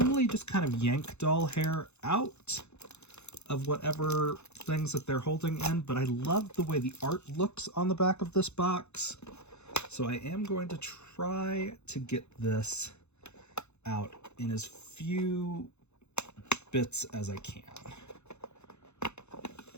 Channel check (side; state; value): right; late; 0.81 ms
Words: just kind of yank doll hair out of whatever things that they're holding in, but I love the way the art looks on the back of this box. So I am going to try to get this out in as few bits as I can.